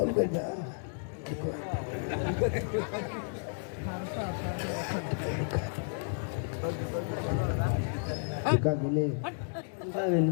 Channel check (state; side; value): silent; right; digital silence